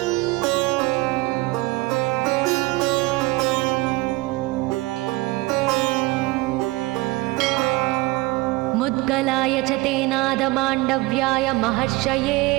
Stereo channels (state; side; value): quieter; left; 21.8 dB